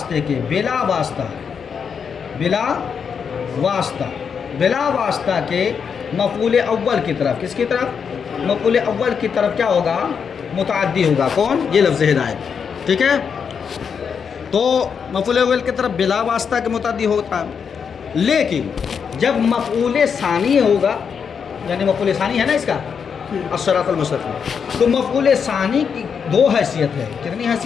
کے، بلا واسطہ، بلا واسطہ، بلا واسطہ کے مفعول اول کی طرف. کس کی طرف؟ مفعول اول کی طرف کیا ہوگا؟ متعدی ہوگا. کون؟ یہ لفظ ہدایت. ٹھیک ہے؟ تو مفعول اول کی طرف بلا واسطہ کے متعدی ہوتا ہے. لیکن جب مفعول ثانی ہوگا، یعنی مفعول ثانی ہے نا اس کا الصراط المستقیم، تو مفعول ثانی کی دو حیثیت ہے. کتنی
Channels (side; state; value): right; quieter; 6.6 dB